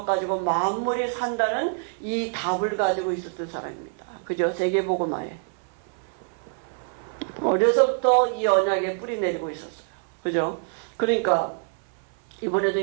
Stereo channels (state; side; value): silent; left; 56 dB below the other